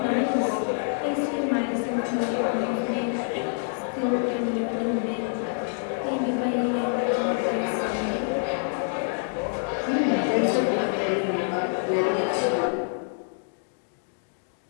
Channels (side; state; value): right; silent; 61 dB below the other